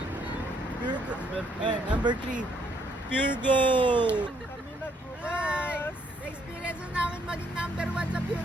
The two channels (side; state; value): both; normal; correlation 0.69